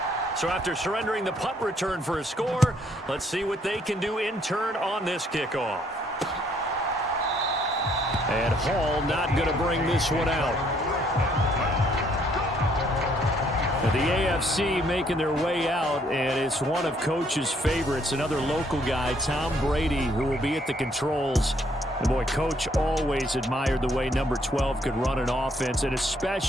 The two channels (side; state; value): both; normal; correlation 0.67